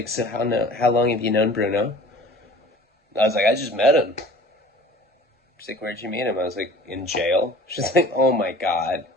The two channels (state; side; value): normal; both; correlation 0.45